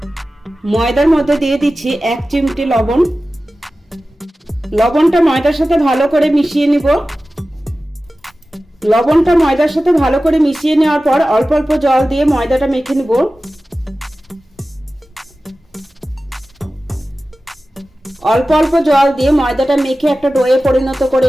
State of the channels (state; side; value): normal; both; correlation 0.95